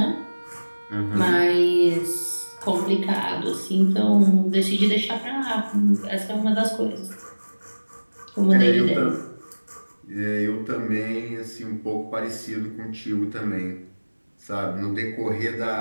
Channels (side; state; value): both; inverted; correlation -1.00